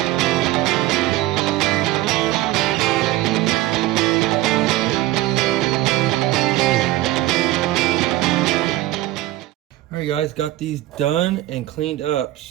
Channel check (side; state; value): left; quieter; 16.5 dB